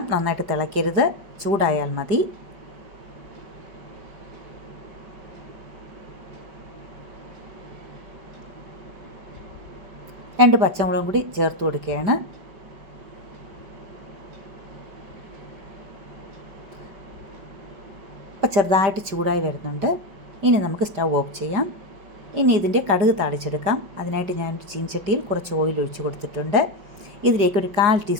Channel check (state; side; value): late; left; 5.2 ms